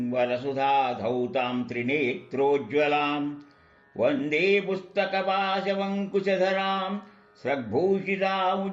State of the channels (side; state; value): both; identical; correlation 1.00